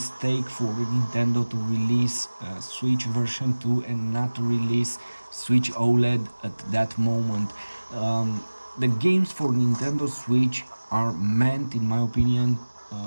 for Nintendo to release Switch version 2 and not to release Switch OLED at that moment. The games for Nintendo Switch are meant, in my opinion,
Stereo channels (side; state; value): both; inverted; correlation -1.00